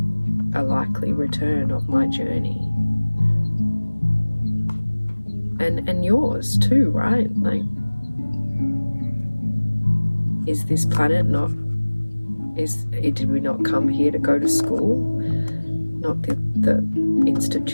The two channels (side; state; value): both; inverted; correlation -1.00